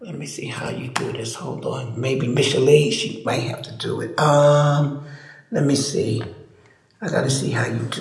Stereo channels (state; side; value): identical; both; correlation 1.00